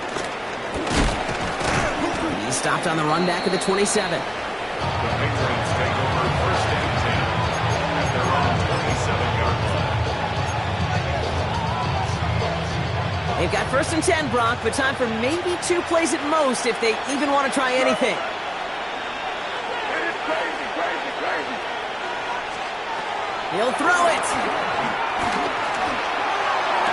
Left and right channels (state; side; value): identical; both; correlation 1.00